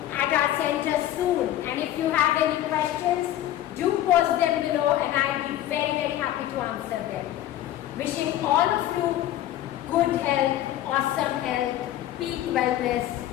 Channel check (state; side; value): quieter; right; 13.0 dB